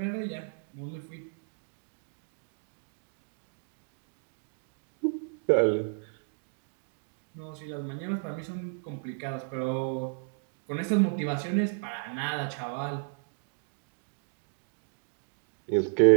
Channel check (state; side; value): silent; left; digital silence